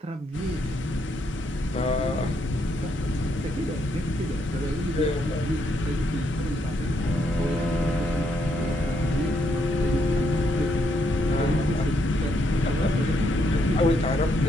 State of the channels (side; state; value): both; normal; correlation 0.75